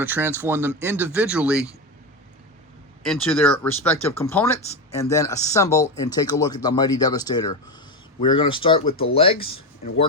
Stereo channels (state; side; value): normal; both; correlation 0.15